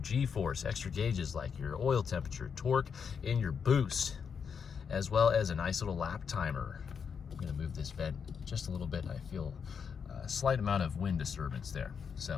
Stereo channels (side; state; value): right; quieter; 6.6 dB